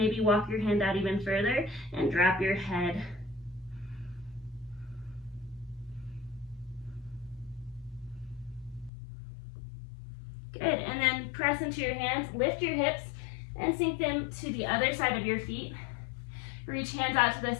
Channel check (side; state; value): right; drops out; at 8.9 s